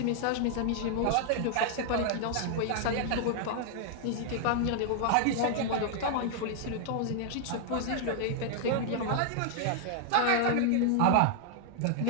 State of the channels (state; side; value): different; both; correlation 0.00